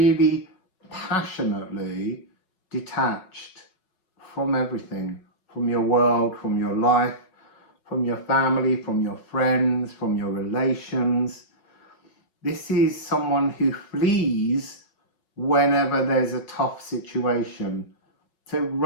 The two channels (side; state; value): right; late; 5.4 ms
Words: passionately detached from everything, from your world, from your life, from your family, from your friends, from your relations. This is someone who flees whenever there's a tough situation. So